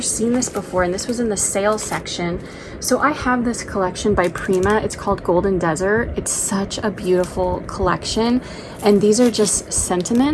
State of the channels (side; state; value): both; identical; correlation 1.00